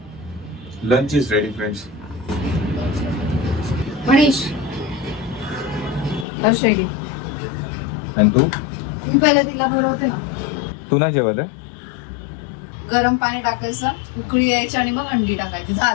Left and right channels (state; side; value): drops out; right; at 6.2 s